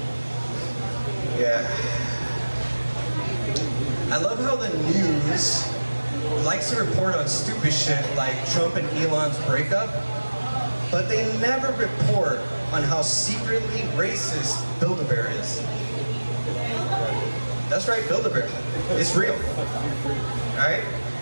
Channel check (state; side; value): inverted; both; correlation -1.00